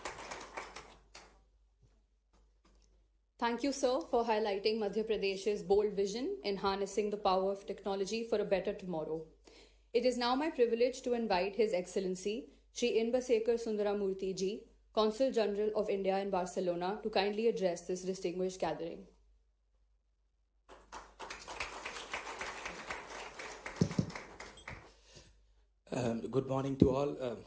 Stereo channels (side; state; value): both; identical; correlation 1.00